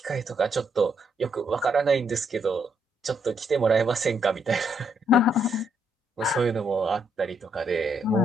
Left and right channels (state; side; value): normal; both; correlation 0.74